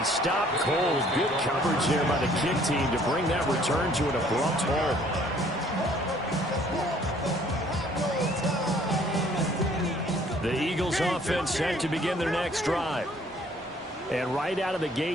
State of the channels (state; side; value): normal; both; correlation 0.59